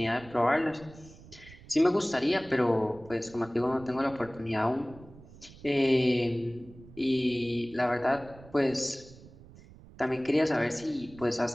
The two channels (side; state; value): right; noise; rumble, 20 dB below the sound